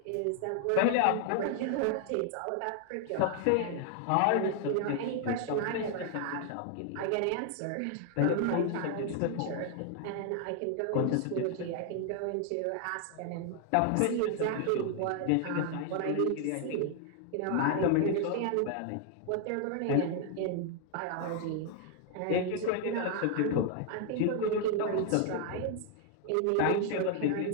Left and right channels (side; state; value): both; different; correlation 0.00